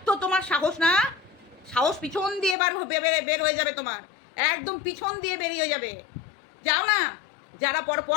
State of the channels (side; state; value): right; drops out; at 2.6 s